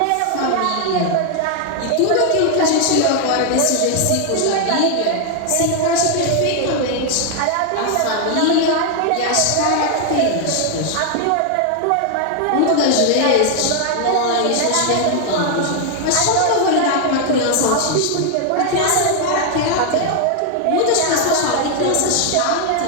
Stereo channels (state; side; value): different; both; correlation 0.00